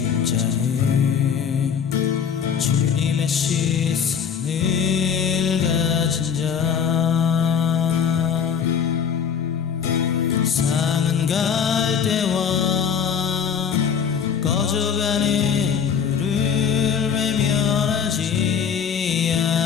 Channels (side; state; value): right; quieter; 7.3 dB